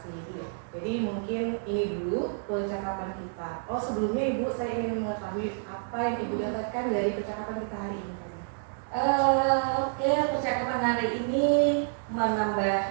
Jadi mungkin ini dulu percakapan kita. Oh, sebelumnya Ibu, saya ingin mengetahui apa yang Ibu dapatkan dari percakapan kita hari ini. Percakapan hari ini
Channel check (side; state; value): left; silent; digital silence